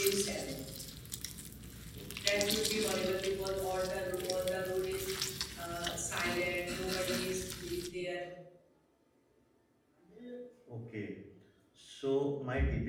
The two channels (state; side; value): identical; both; correlation 1.00